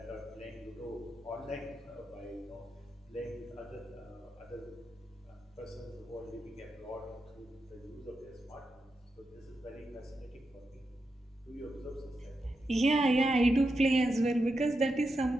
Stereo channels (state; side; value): normal; both; correlation 0.87